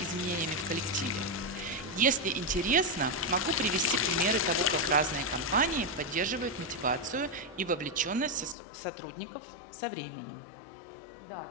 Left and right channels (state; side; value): drops out; right; at 8.6 s